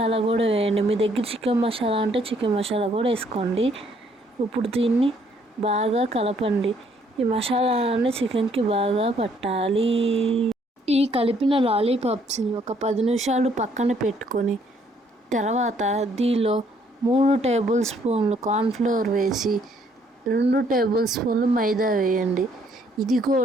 కూడా వేయండి. మీ దగ్గర చికెన్ మసాలా అంటే చికెన్ మసాలా కూడా వేసుకోండి. ఇప్పుడు దీన్ని బాగా కలపండి. ఈ మసాలాలన్నీ చికెన్కి బాగా పట్టాలి. ఈ కలిపిన లాలీపాప్స్ని ఒక 10 నిమిషాలు పక్కన పెట్టుకొని తర్వాత దీనిలో 3 టేబుల్ స్పూన్లు కార్న్ఫ్లోర్ వేసి 2 టేబుల్ స్పూన్లు మైదా వేయండి. ఇది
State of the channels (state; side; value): normal; both; correlation 0.66